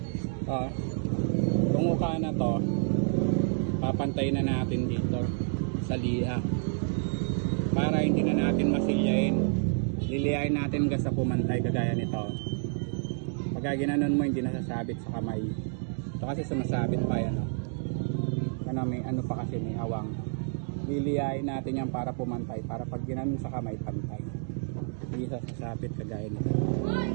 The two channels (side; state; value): left; silent; 58 dB below the other